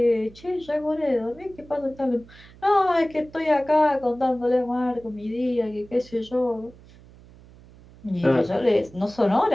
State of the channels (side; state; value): right; noise; hum, 23 dB below the sound